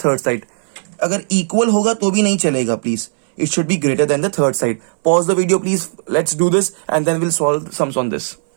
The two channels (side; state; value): left; silent; 64 dB below the other